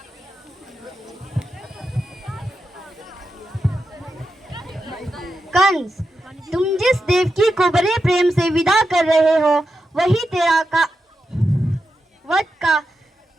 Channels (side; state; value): both; normal; correlation 0.88